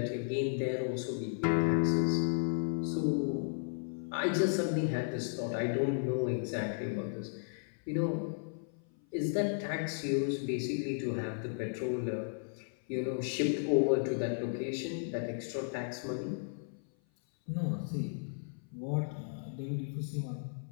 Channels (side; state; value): right; silent; 55 dB below the other